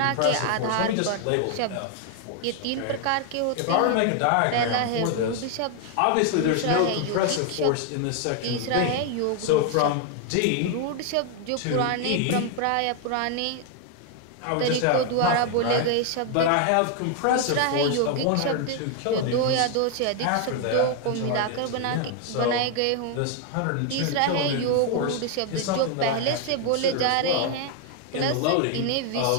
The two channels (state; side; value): different; both; correlation 0.00